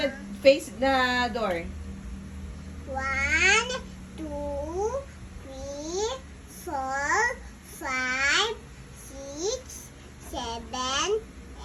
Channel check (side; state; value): both; identical; correlation 1.00